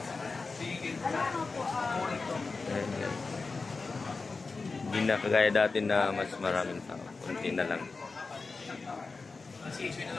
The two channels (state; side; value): quieter; right; 4.1 dB